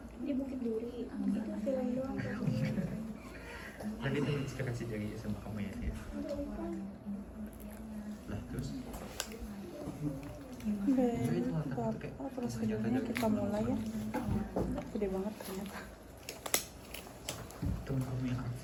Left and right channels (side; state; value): both; identical; correlation 1.00